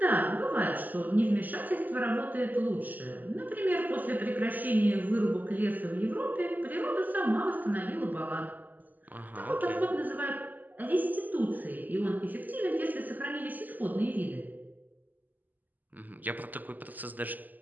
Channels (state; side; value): late; left; 0.084 ms